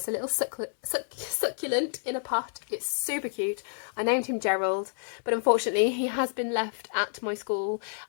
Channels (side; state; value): right; silent; 59 dB below the other